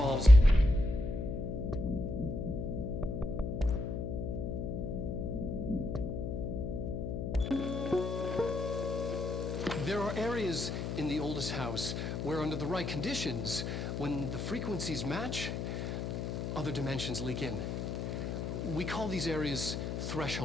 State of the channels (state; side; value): noise; left; hum, 3 dB below the sound